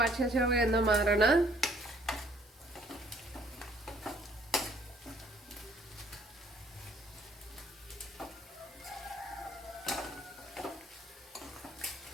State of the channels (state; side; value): normal; both; correlation 0.61